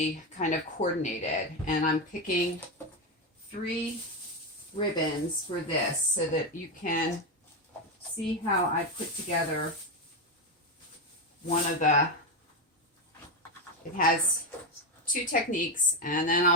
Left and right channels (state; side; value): normal; both; correlation 0.10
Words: kind of coordinated, and I'm picking 3 ribbons for this so that you can see how I put together one of the, it has 2 techniques, and then